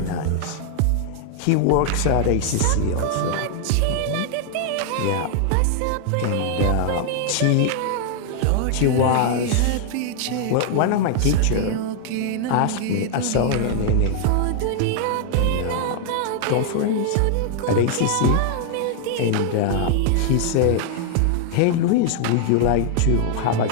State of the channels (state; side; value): different; both; correlation 0.00